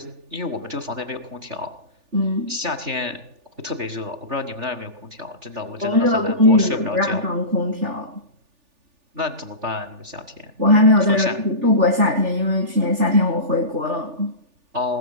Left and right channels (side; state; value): left; late; 3.4 ms